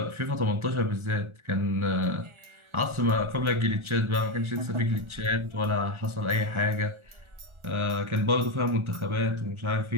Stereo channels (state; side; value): late; left; 1.4 ms